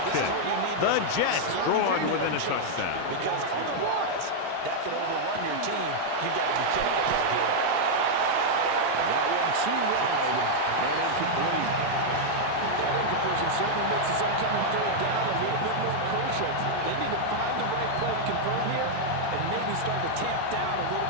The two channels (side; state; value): both; different; correlation -0.01